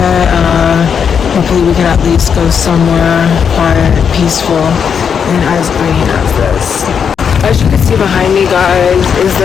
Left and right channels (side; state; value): right; quieter; 7.1 dB